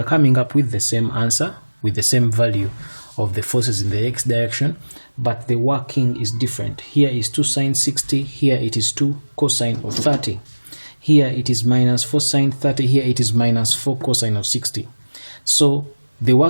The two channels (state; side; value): inverted; both; correlation -1.00